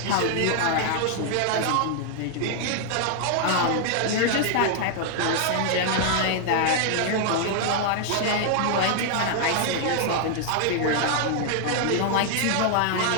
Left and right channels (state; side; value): different; both; correlation 0.00